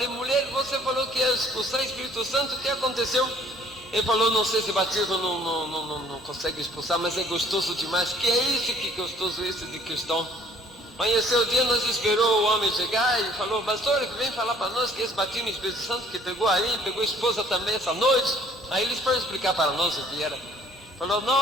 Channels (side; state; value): both; normal; correlation 0.57